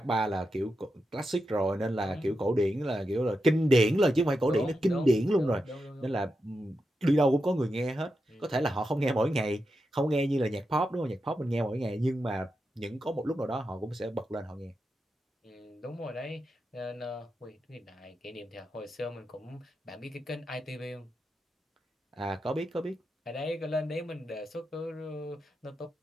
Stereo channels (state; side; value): normal; both; correlation 0.88